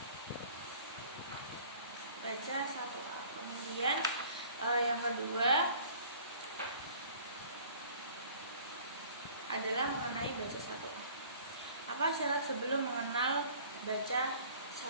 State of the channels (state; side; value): inverted; both; correlation -0.50